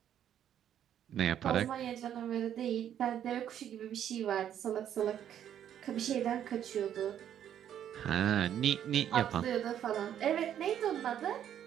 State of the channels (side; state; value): left; quieter; 10.1 dB